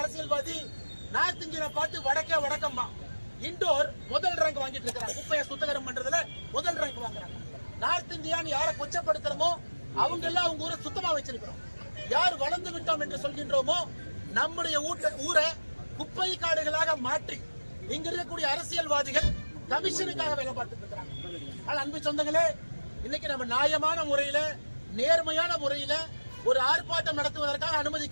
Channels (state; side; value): inverted; both; correlation -1.00